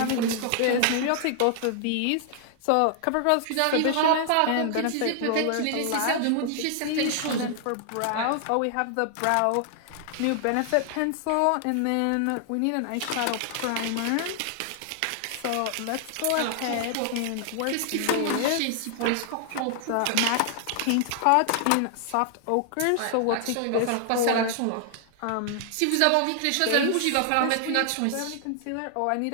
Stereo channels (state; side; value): different; both; correlation 0.00